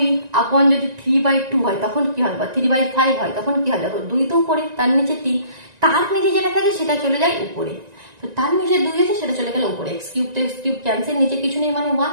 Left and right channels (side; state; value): left; late; 1.9 ms